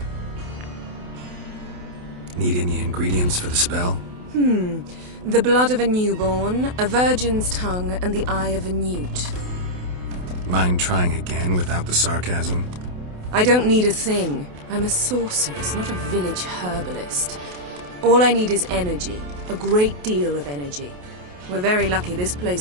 Need any ingredients for the spell? The blood of a newborn, a virgin's tongue, and the eye of a newt. Mind trying again without the sarcasm? I don't need a thing. I'm a sorceress, not a village herbalist. All I need is energy. A great deal of energy. We're very lucky this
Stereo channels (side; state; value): left; late; 28 ms